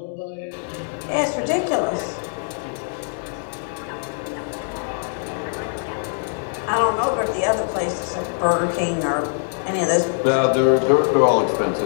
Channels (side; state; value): right; silent; 64 dB below the other